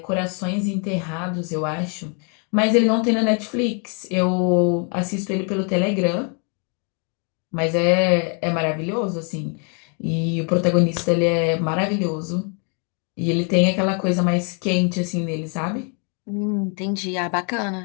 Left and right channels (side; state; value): right; quieter; 38.8 dB